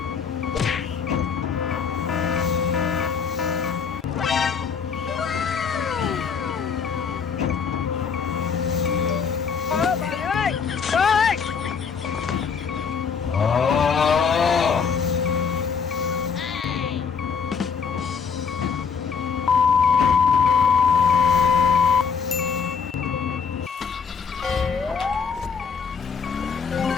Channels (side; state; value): right; quieter; 6.1 dB